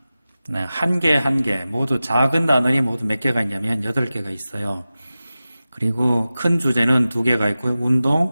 한 개 모두 작은 단원이 모두 몇 개가 있냐면 8개가 있어요. 그리고 큰 주제는 2개가 있고요.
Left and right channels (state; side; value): inverted; both; correlation -0.95